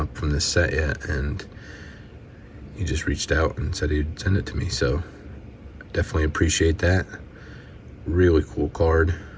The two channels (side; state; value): both; identical; correlation 1.00